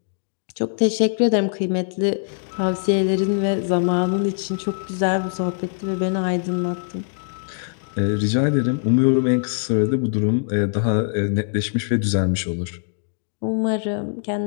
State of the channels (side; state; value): right; silent; digital silence